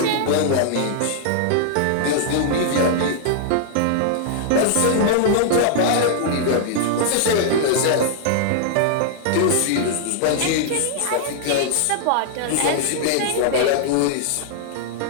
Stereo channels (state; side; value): different; both; correlation -0.01